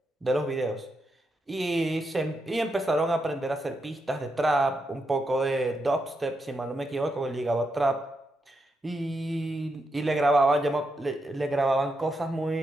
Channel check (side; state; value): both; normal; correlation 0.83